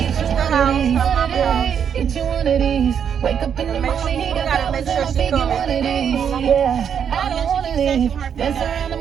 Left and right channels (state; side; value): quieter; left; 8.0 dB